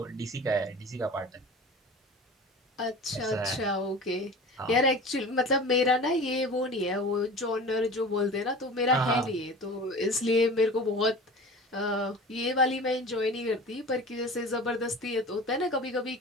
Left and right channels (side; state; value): both; normal; correlation 0.37